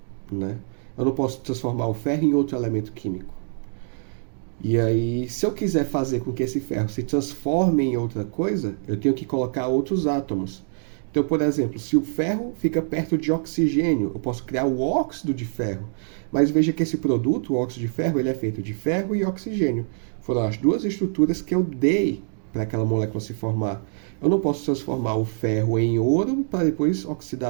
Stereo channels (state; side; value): silent; left; digital silence